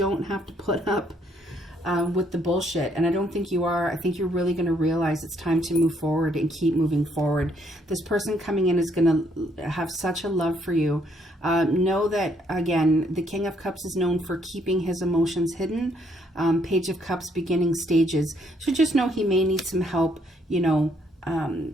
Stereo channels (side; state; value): both; normal; correlation 0.69